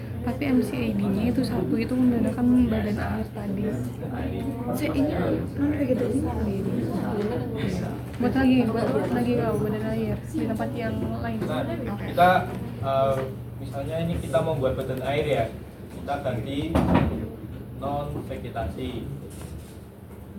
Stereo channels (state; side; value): identical; both; correlation 1.00